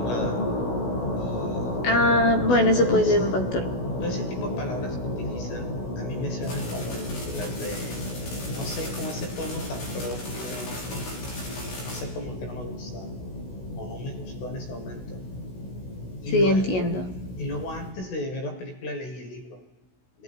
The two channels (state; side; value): late; right; 16 ms